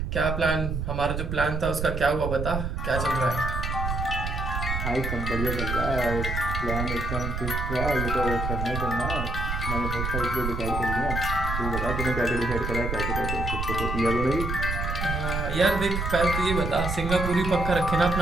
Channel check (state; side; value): noise; right; rumble, 3 dB below the sound